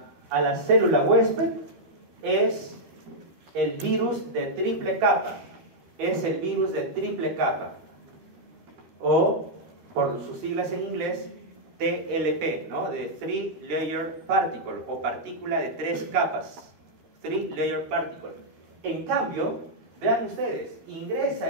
la célula huésped es el virus de triple capa, o por sus siglas en inglés, TLP, ¿no? De Three Layer Particle, o partícula de 3 capas, Three Layer Particle. En cambio, vean ustedes, ingresa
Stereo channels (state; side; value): late; left; 13 ms